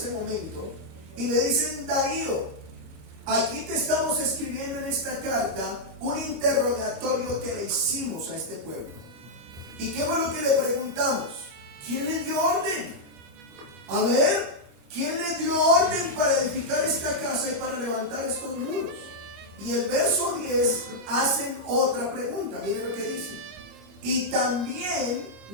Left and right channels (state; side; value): late; left; 25 ms